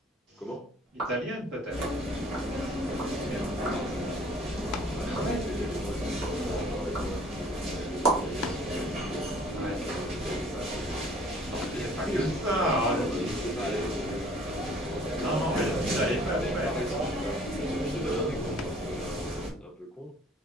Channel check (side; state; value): both; normal; correlation 0.54